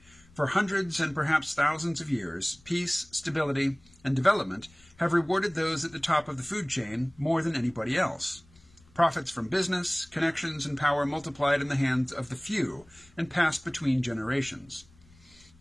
For hundreds and perhaps thousands of years, peace, stability, and development have rewarded those at the top of the food chain more than anybody else. Profits from business, connections, and power multiplied in the hands of the few and passed between generations.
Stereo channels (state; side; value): noise; left; rumble, 28 dB below the sound